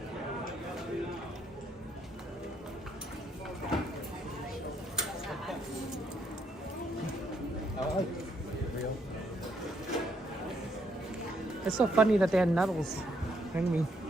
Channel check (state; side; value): normal; both; correlation 0.73